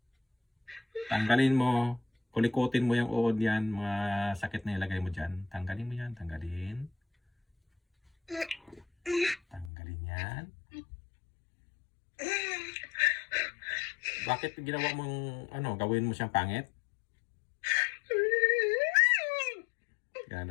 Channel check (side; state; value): right; drops out; at 9.7 s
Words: Tanggalin mo. Kulikutin mo yung uod yan. Mga sakit na ilagay mo dyan. Tanggalin mo yan. Tanggalin. Tanggalin yan. Bakit ginawa mong ano, gawin mo siyang pangit?